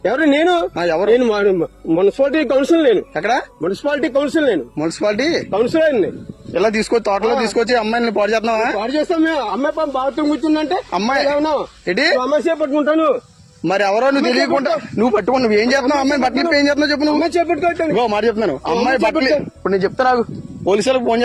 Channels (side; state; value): both; identical; correlation 1.00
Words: ఎవరు? నేను ఎవరు? Municipality council. నేను ఎక్కడ? Municipality council. నేను మున్సిపాలిటీ కౌన్సిలర్. ఇలా తీసుకొచ్చి తోటలో తీసుకొచ్చి అమ్మాయిని పాడు చేస్తున్నావా? పాడు చేస్తాం మేము. అమ్మాయి బాత్రూమ్ కూర్చుందంటే అమ్మాయి ఏంటి అమ్మాయి చేపట్టుకుంటాను. మరి ఎవరో నువ్వు తెలియకుండా నువ్వు పట్టుకుని నువ్వు ఏం చేస్తున్నావు? అమ్మాయి బట్టలు ఏం చేస్తున్నావు చెప్పు. నువ్వు చేపట్టుకుంటాను మాట చెప్తున్నాను. అమ్మాయి బట్టలు ఇప్పుడు నేను చెప్తా నాకు పోలీసులకు ఫోన్